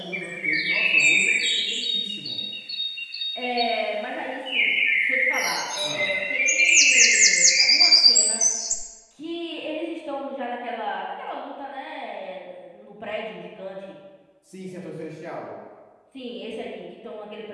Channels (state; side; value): identical; both; correlation 1.00